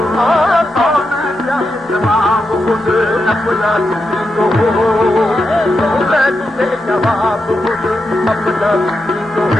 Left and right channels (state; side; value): normal; both; correlation 0.86